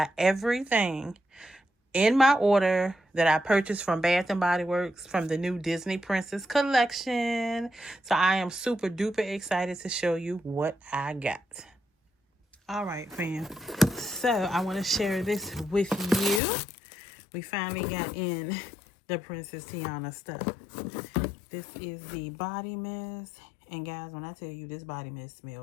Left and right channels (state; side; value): drops out; right; at 16.4 s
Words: everything in my order that I purchased from Bath and Body Works from the new Disney Princess collection. So I am super duper excited to show you what I got. All right, fam. So I want to share this with you. We finally got in the Princess Tiana stuff. This is the body mist. And guys, when I tell you this body mist